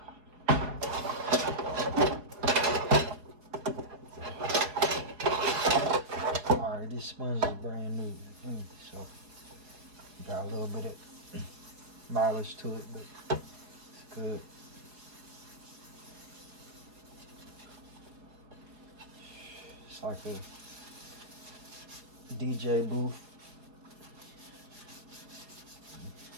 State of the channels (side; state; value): left; late; 4.5 ms